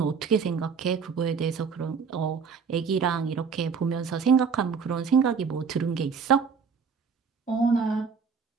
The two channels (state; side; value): quieter; left; 5.7 dB